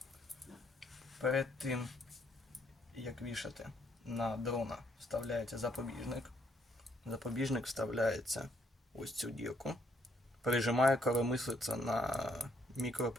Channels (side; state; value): both; normal; correlation 0.70